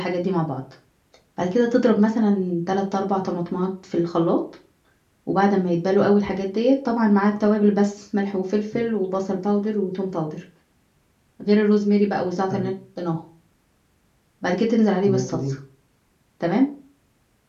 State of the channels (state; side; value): identical; both; correlation 1.00